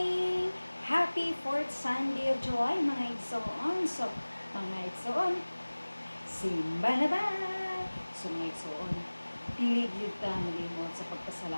Happy 4th Sunday of July, mga igsoon. So, mga igsoon, simba na ba? So, mga igsoon, pilig yun ka malimot sa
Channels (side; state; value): both; inverted; correlation -1.00